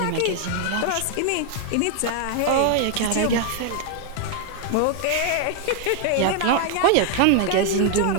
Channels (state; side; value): different; both; correlation 0.00